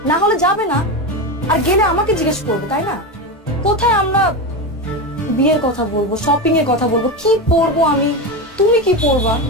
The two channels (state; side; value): normal; both; correlation 0.17